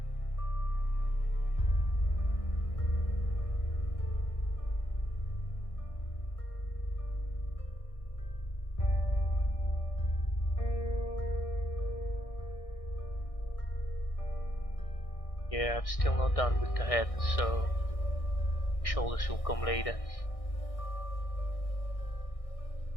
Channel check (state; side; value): late; right; 1.6 ms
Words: Yeah, I'm still not done with the head, so shoulders will come later.